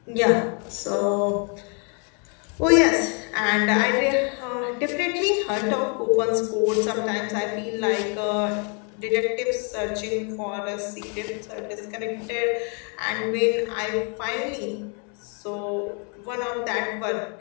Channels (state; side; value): quieter; right; 37.8 dB